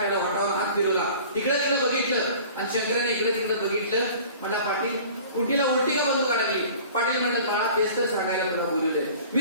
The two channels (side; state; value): both; inverted; correlation -0.45